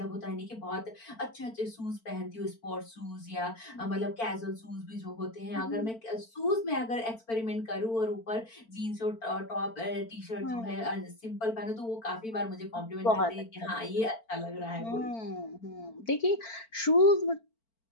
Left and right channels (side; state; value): right; late; 4.5 ms